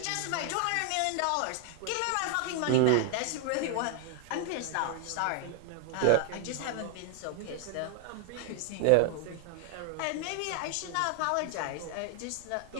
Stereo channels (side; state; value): both; different; correlation 0.00